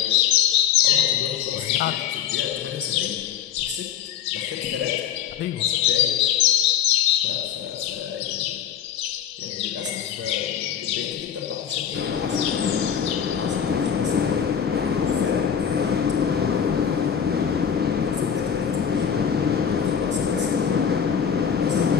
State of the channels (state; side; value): quieter; right; 8.5 dB